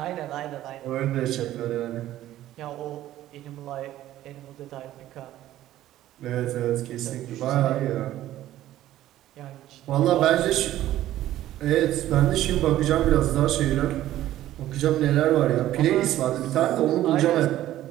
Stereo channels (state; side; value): quieter; left; 13.7 dB